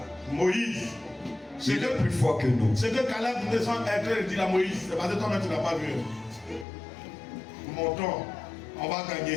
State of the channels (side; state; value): right; drops out; at 6.7 s